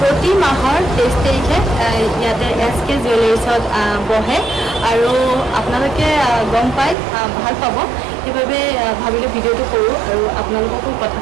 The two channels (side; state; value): left; drops out; at 7.0 s